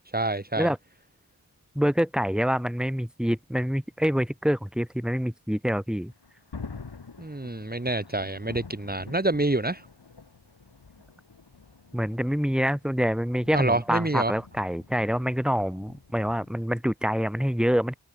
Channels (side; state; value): both; normal; correlation 0.81